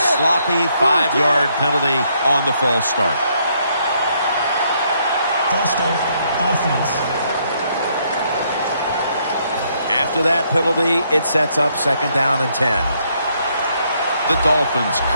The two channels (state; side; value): inverted; both; correlation -0.72